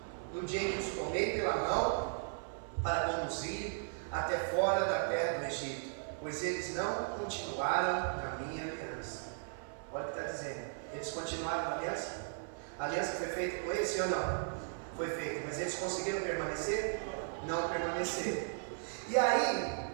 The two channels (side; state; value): left; silent; 53 dB below the other